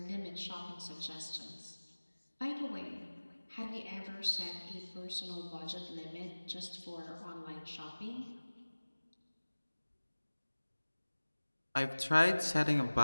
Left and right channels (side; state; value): both; inverted; correlation -1.00